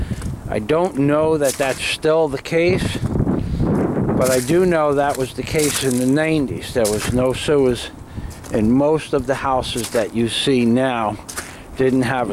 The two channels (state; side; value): identical; both; correlation 1.00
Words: I don't know that that's still the case, but I do know that was the case in the 90s. There was no sewers in most of the houses that you see now. Didn't have